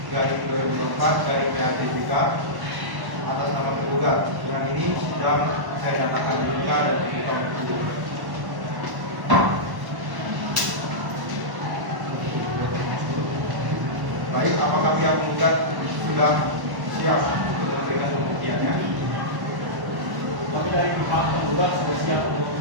garing 2024 garing PRTJK atas nama tergugat. Dengan ini sidang saya nyatakan dibuka dan terbuka untuk umum. Baik, apakah pihak penggugat sudah siap untuk memberikan pembuktiannya? Kami dari pihak penggugat sudah siap untuk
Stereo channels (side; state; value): left; late; 1.1 ms